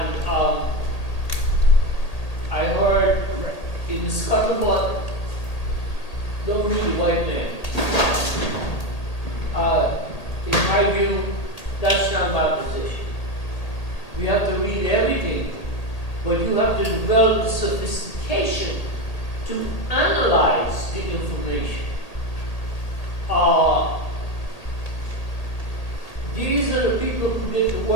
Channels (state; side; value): late; right; 1.8 ms